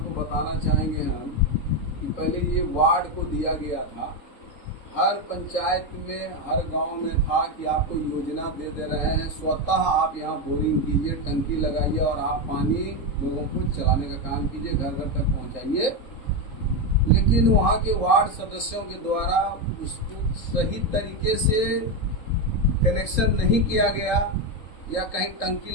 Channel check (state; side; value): late; right; 3.7 ms